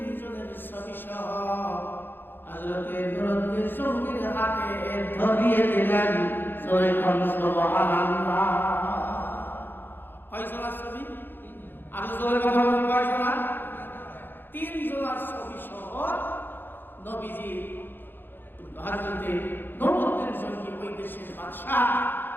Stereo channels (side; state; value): right; late; 0.097 ms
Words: ছবি সহ হযরতে নূরুদ্দিন চৌধুরীর হাতে ধরিয়ে দিলেন। সুবহানাল্লাহ। কয়জনের ছবি? আর জোরে কথা বলুন, কয়জনের? তিনজনের ছবি সহ নবীজি হযরতে নূরুদ্দিন চৌধুরী ওই দেশের বাদশা